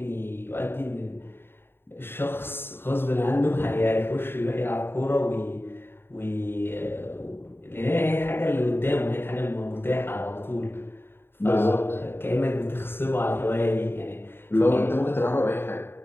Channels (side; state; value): right; late; 0.11 ms